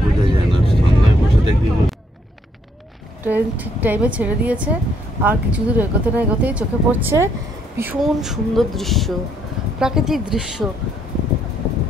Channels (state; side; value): normal; both; correlation 0.71